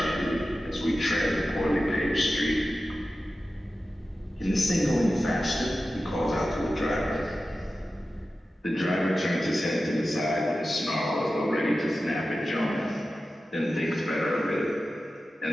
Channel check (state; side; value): normal; both; correlation 0.94